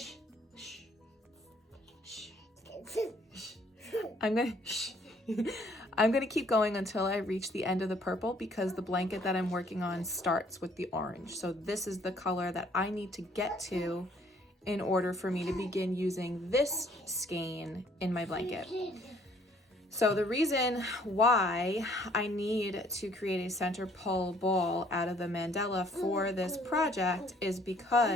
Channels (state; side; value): normal; both; correlation 0.62